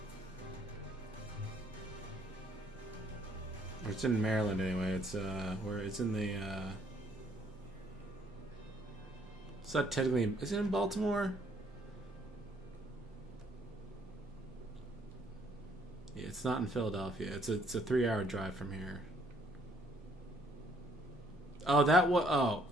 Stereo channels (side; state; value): both; normal; correlation 0.65